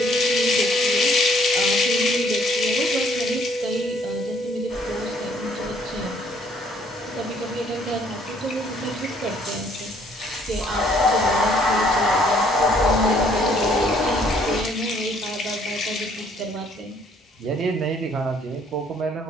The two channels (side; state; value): both; normal; correlation 0.63